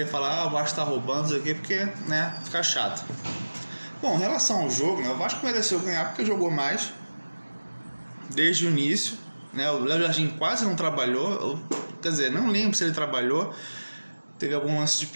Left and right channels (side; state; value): both; inverted; correlation -1.00